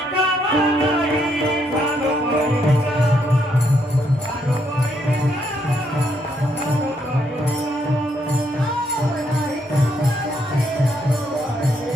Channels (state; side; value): normal; both; correlation 0.74